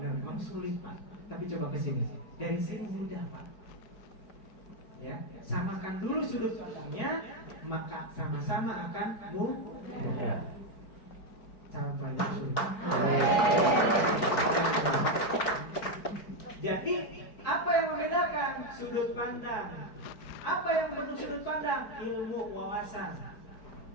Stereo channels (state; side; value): late; right; 4.9 ms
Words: memang sulit, Pak. Tapi coba ke sini. Dari sini mudah, Pak. Ya, samakan dulu sudut pandangnya, maka sama-sama akan mudah. Cara pelajaran sulit. Jadi, apa yang membedakan sudut pandang? Apa yang bentuk sudut pandang? Ilmu wawasan.